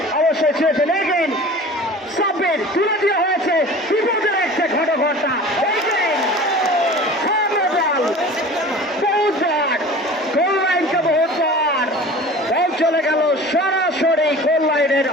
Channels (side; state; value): both; normal; correlation 0.40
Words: অবশ্যই ছুঁয়েছেন। এগেন সাব্বির তুলে দেওয়া হয়েছে, বিপদের একটা ঘটঘটা। গোল লাইনকে বহুবার বল চলে গেল সরাসরি গোল লাইনের